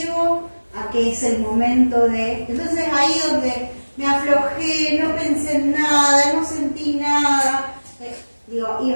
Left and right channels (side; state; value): both; inverted; correlation -1.00